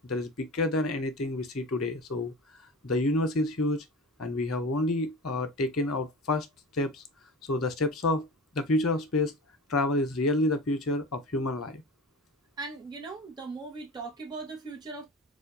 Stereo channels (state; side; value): normal; both; correlation 0.33